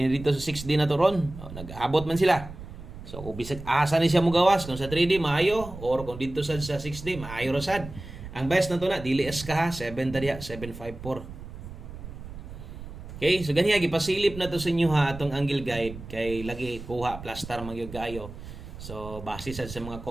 dito sa 6D na to ron nag-abot man sila so kung bisag asa ni siya mogawas kung sa 3D maayo or kung dito sa 6D maayo ra sad ang best na to na dili es ka ha 7 ta diha 754 okay so ganiya gipasilip na to sa inyo ha atong angle guide kay lagi kuha plaster man gyud kaayo. So, base sa mga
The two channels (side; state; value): right; noise; rumble, 12 dB below the sound